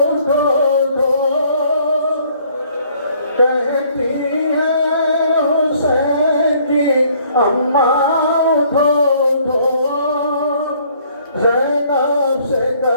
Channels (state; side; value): inverted; both; correlation -0.61